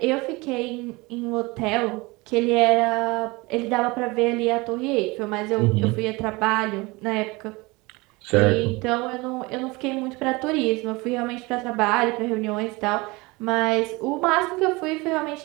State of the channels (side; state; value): left; quieter; 24.0 dB